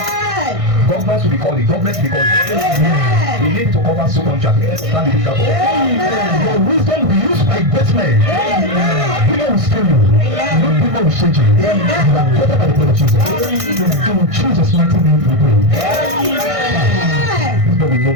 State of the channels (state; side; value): late; left; 1.6 ms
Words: Governments will be calling, governments will be calling. We need to cover so contract. Stand the picture for. Your wisdom will be used by great men. People will steal you. People will shake you. You are covered by the blood of Jesus. In Jesus' mighty name we pray. This boy will know